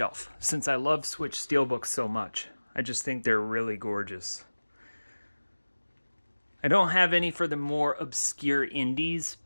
since I love Switch steelbooks so much. I just think they're really gorgeous. I don't have any for the more obscure indies,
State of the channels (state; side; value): inverted; both; correlation -1.00